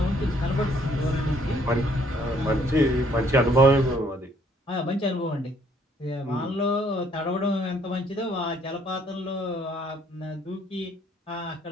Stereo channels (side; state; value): both; normal; correlation 0.65